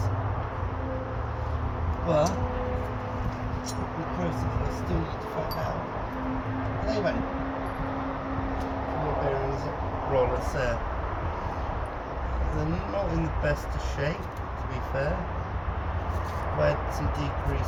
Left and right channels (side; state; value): both; identical; correlation 1.00